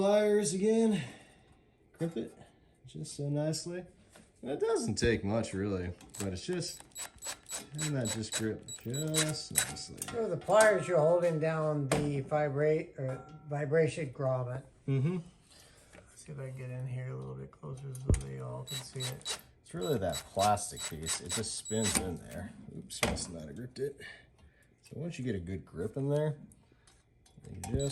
again, crimp it just so nicely. And it doesn't take much really, but it's just, and that just grip just nicely. So the pliers, you're holding down the vibration grommet. Mm-hmm. Let's see if I can get in here a little bit closer so they all can see it. It's really that plastic piece. It just spins in there. Oops, must not have gripped it. So once you get a good grip in there, you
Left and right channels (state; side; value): identical; both; correlation 1.00